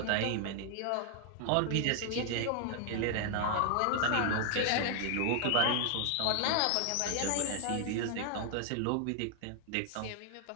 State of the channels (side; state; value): both; different; correlation 0.00